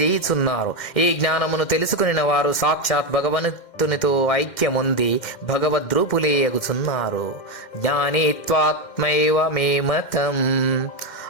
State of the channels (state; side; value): late; right; 2.1 ms